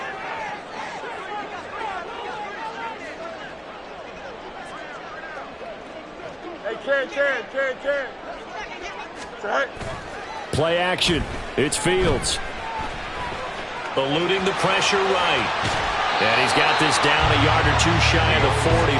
Hey, Ken. Right. Play action. It's Fields. Eluding the pressure right. And he's got this down a yard or two shy of the 40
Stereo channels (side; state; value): both; identical; correlation 1.00